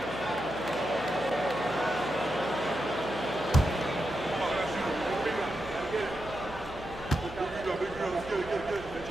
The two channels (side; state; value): right; noise; hum, 17 dB below the sound